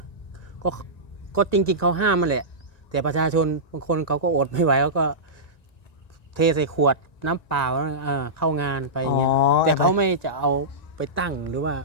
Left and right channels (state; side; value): late; right; 1.9 ms